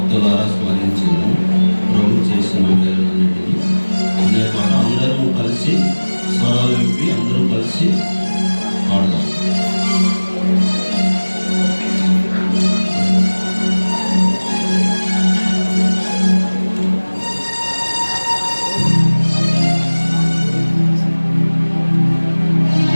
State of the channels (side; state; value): both; inverted; correlation -1.00